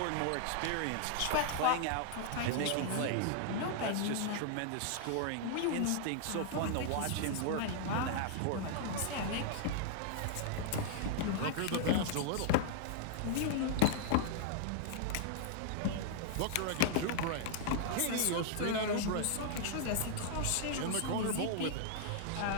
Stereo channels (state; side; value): different; both; correlation -0.01